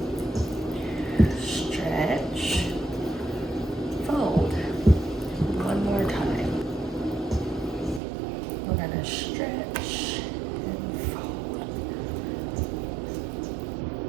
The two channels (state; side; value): drops out; left; at 8.0 s